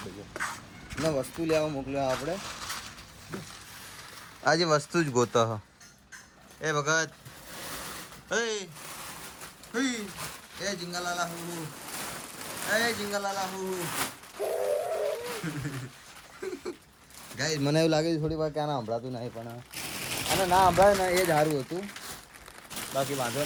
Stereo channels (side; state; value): both; identical; correlation 1.00